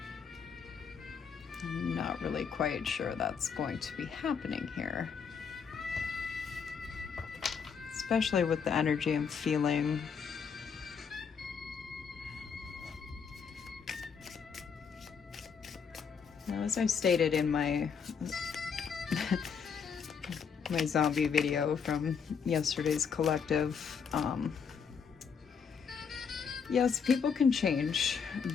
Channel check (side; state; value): right; quieter; 6.4 dB